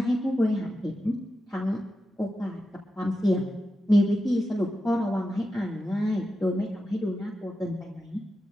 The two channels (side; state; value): both; normal; correlation 0.90